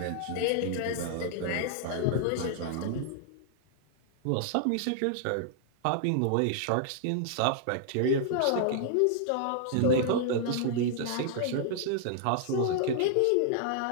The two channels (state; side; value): different; both; correlation -0.01